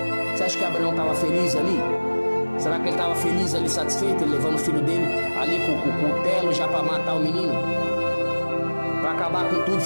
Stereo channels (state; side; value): inverted; both; correlation -1.00